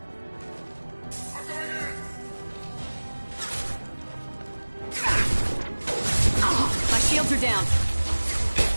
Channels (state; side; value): inverted; both; correlation -1.00